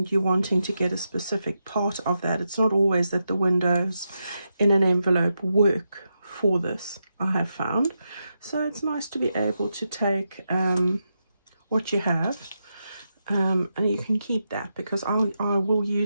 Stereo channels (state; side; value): inverted; both; correlation -0.86